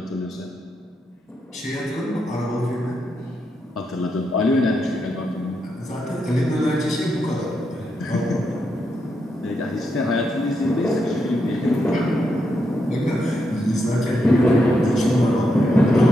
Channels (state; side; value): normal; both; correlation 0.82